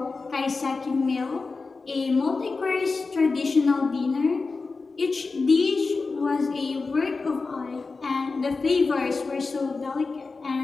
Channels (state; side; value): quieter; right; 4.1 dB